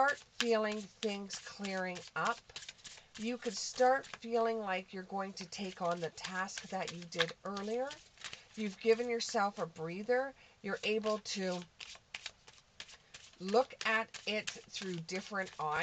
feeling things clearing up. You could start feeling like you're going to take on the task that you did earlier. You've given yourself a breather. You're able to look at it through different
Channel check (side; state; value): both; identical; correlation 1.00